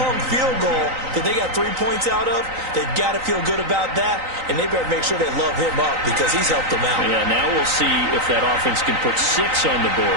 field goal that they got 3 points out of. They've got to feel good about that, and they better make sure they love him up because he's helped them out. Yeah, now we'll see if that offense can put 6 on the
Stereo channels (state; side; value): late; left; 3.9 ms